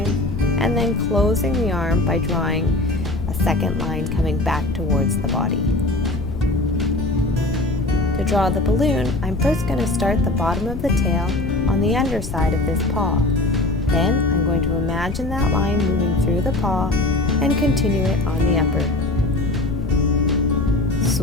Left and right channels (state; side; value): noise; left; rumble, 6 dB below the sound